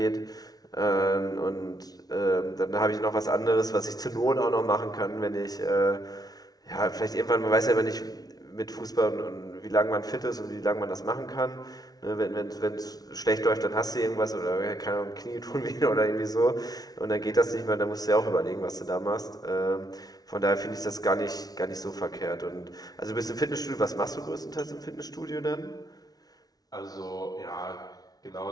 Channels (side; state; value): right; late; 0.19 ms